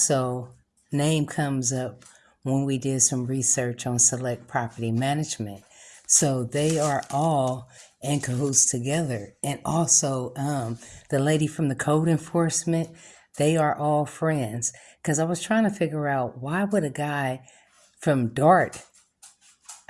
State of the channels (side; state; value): both; identical; correlation 1.00